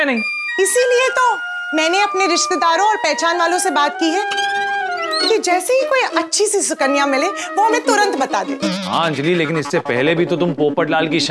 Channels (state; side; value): identical; both; correlation 1.00